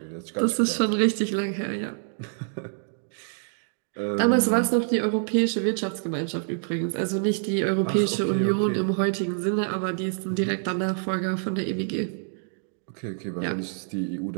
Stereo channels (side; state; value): left; silent; digital silence